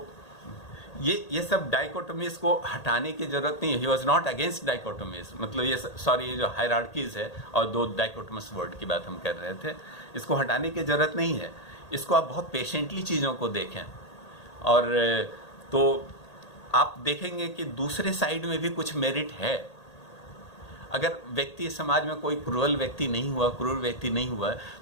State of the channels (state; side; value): late; right; 1.8 ms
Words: ये सब डाइकोटोमीज को हटाने की ज़रूरत नहीं है। ही वॉज नॉट अगेंस्ट डाइकोटोमीज, मतलब ये जो हायरार्कीज़ है और दो डाइकोटोमस वर्ड की बात हम कर रहे थे, इसको हटाने की ज़रूरत नहीं है। इसको आप बहुत पेशेंटली चीज़ों को देखें और तो आप देखेंगे कि दूसरे साइड में भी कुछ मेरिट है। अगर व्यक्ति समाज में कोई क्रूर व्यक्ति नहीं हुआ